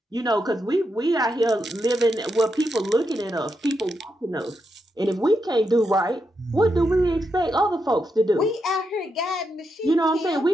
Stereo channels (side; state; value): both; normal; correlation 0.84